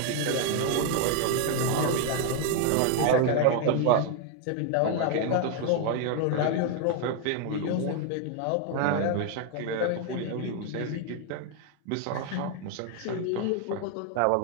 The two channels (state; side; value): different; both; correlation 0.00